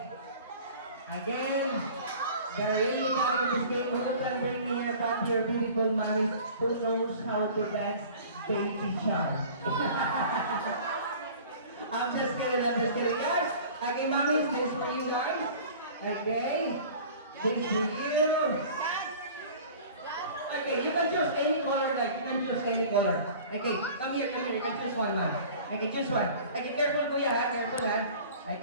the really coming in this game, who can bring me here back your beautiful mommies who knows how to dance baby shark? I'm just kidding, guys. Okay, mommies, this for you guys. Okay, this for you. Okay, you can choose any color, like, you can choose any color. Okay, come here, you can choose one, ma'am. Okay, choose one. Okay, careful, kuya, ha? Careful, ha?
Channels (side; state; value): both; inverted; correlation -0.44